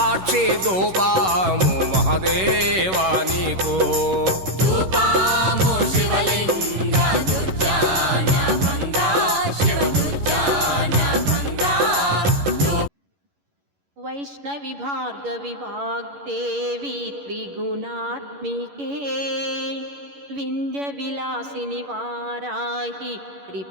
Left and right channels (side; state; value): left; late; 11 ms